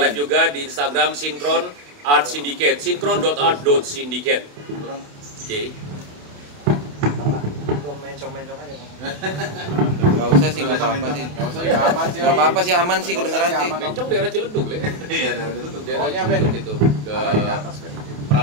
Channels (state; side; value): late; left; 28 ms